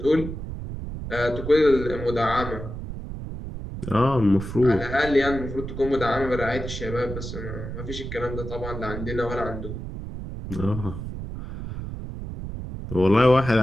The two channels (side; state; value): right; noise; rumble, 8 dB below the sound